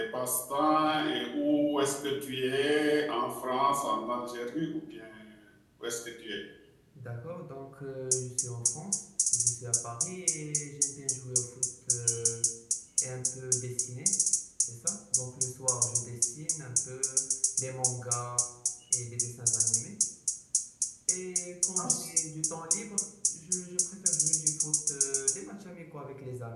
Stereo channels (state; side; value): identical; both; correlation 1.00